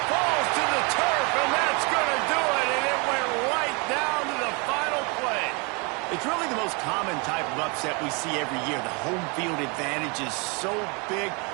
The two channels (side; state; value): left; quieter; 31.2 dB